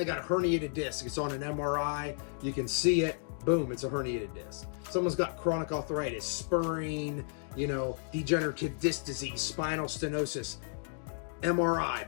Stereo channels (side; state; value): right; silent; digital silence